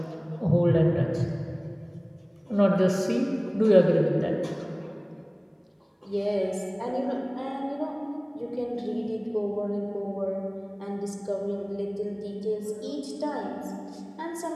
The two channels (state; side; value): identical; both; correlation 1.00